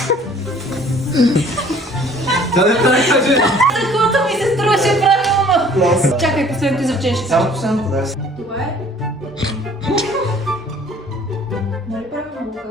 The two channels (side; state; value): both; normal; correlation 0.54